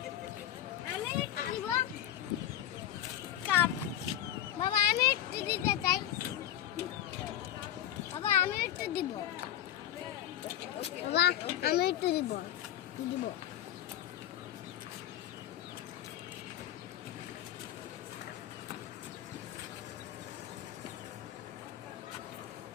আমি একটু দিব কাপ। বাবা আমি একটু দিতে চাই, বাবা আমি একটু দিব, বাবা আমি একটু দিব দিব।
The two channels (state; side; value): quieter; right; 11.7 dB